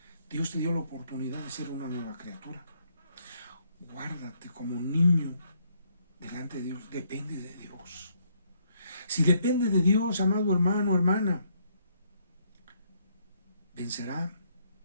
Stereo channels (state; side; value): inverted; both; correlation -0.70